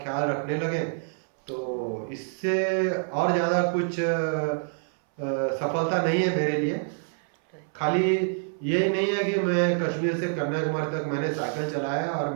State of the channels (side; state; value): left; silent; 60 dB below the other